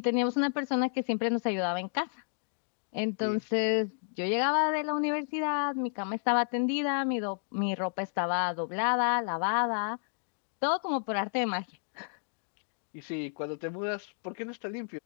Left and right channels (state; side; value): silent; right; digital silence